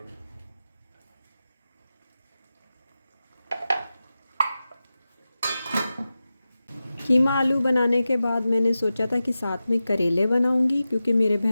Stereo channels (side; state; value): both; inverted; correlation -0.94